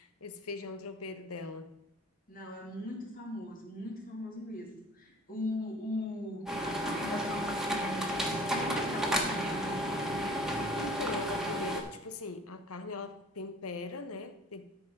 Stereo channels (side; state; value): both; normal; correlation 0.48